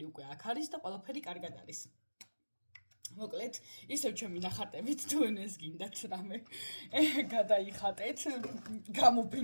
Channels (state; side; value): inverted; both; correlation -1.00